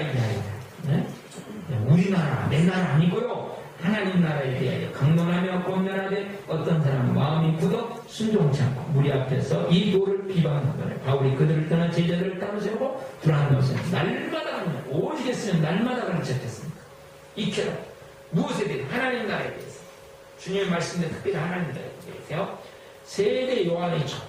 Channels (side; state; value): both; identical; correlation 1.00